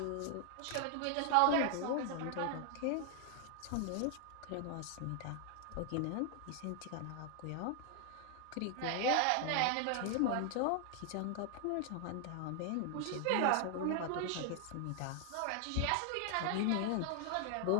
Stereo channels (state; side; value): different; both; correlation 0.00